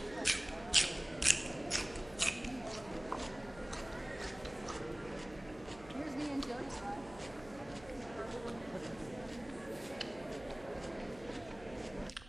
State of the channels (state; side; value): noise; right; hum, 18 dB below the sound